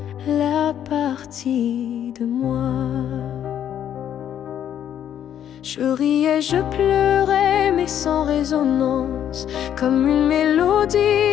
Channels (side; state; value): right; quieter; 10.0 dB